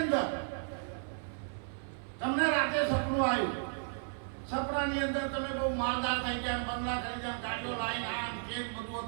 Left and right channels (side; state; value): left; silent; 55 dB below the other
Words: અંદર તમને રાતે સપનું આવ્યું, સપનાની અંદર તમે બહુ માલદાર થઈ ગયા, બંગલા કરી ગયા, ગાડીઓ લાઈન આમ કેમ બધું